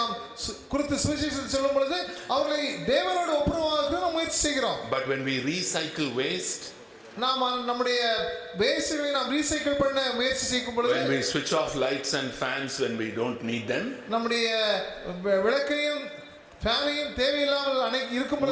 குறித்து சுவிசேஷத்தை சொல்லும் பொழுது அவர்களை தேவனோடு ஒப்புரவாக்க நாம் முயற்சி செய்கிறோம். But when we recycle waste, நாம் நம்முடைய வேஸ்ட்களை நாம் ரீசைக்கிள் பண்ண முயற்சி செய்யும் பொழுது, when we switch off lights and fans when we don't need them, நம்முடைய விளக்கையும் ஃபேனையும் தேவையில்லாமல் இருக்கும்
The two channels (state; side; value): identical; both; correlation 1.00